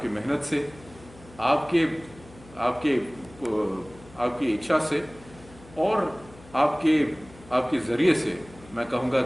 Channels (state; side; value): noise; left; hum, 21 dB below the sound